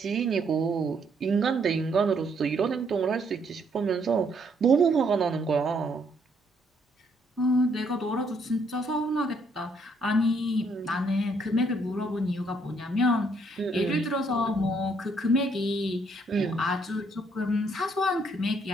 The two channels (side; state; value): both; normal; correlation 0.70